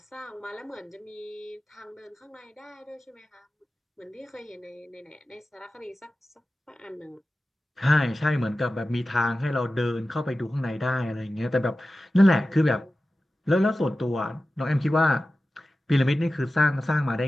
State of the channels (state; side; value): normal; both; correlation 0.94